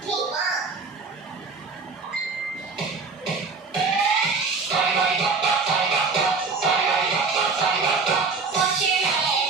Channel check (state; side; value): quieter; left; 4.5 dB